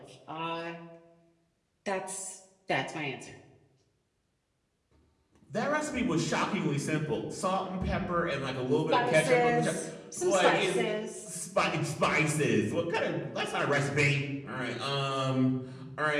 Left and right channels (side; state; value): both; identical; correlation 1.00